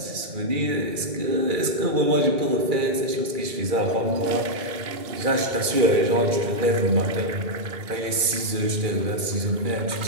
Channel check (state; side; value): late; left; 2.3 ms